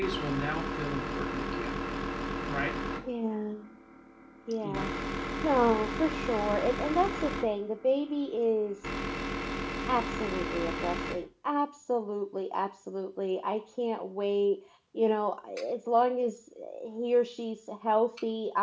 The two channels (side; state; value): both; identical; correlation 1.00